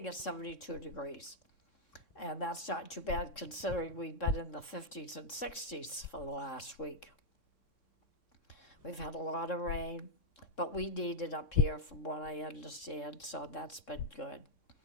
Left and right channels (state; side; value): late; right; 3.7 ms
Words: it's 72 degrees. And that's not too bad considering we've been in the 50s and 60s for the last week. We've had a lot of rain, but we need it up here from what I understand, so that's been good.